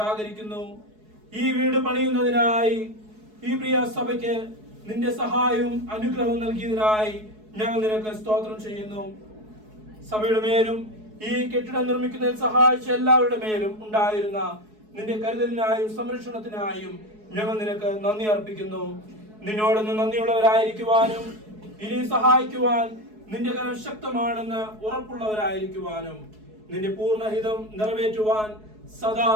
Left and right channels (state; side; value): late; left; 4.7 ms